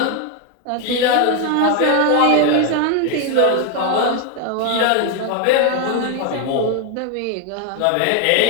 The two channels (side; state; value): both; different; correlation 0.01